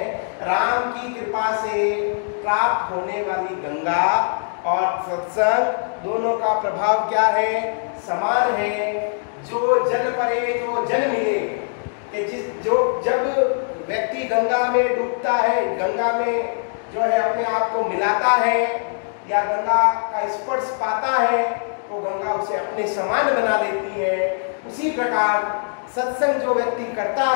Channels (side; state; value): right; silent; digital silence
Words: राम की कृपा से प्राप्त होने वाली गंगा और सत्संग दोनों का प्रभाव क्या है? समान है। जो जल परे, जो जल मिले, कि जब व्यक्ति गंगा में डूबता है, गंगा में जो है अपने आप को मिलाता है या गंगा का स्पर्श पाता है, तो गंगा उसे अपने समान बना देती है। उसी प्रकार सत्संग जो व्यक्ति करता